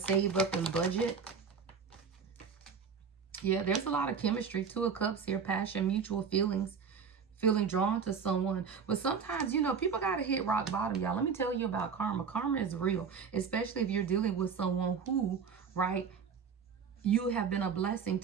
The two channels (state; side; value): quieter; left; 6.1 dB